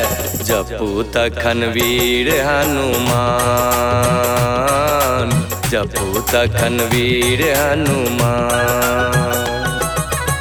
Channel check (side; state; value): both; identical; correlation 1.00